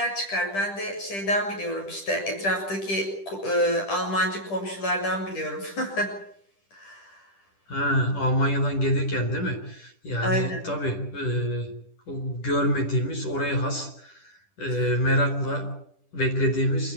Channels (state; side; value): late; right; 10 ms